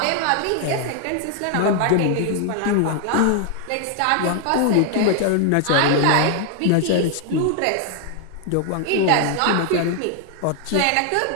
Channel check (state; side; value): different; both; correlation 0.00